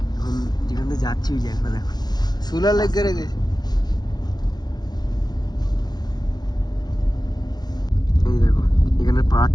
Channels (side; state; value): right; late; 0.19 ms